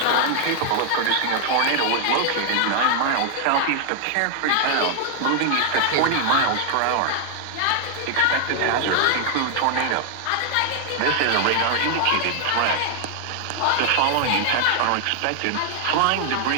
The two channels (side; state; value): both; different; correlation 0.00